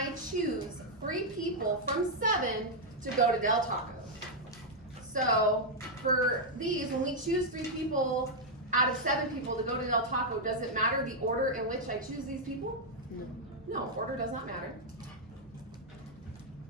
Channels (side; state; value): both; normal; correlation -0.03